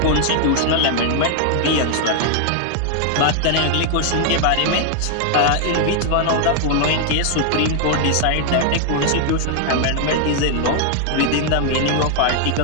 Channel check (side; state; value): both; different; correlation 0.00